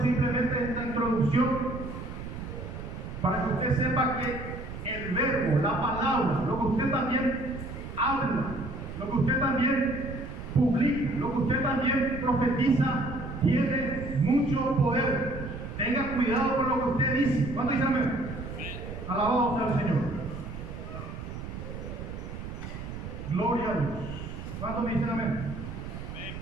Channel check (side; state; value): right; noise; rumble, 9 dB below the sound